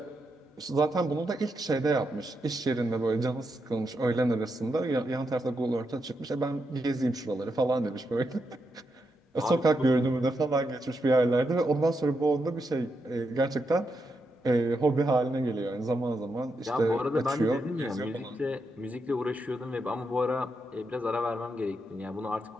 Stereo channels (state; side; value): normal; both; correlation 0.83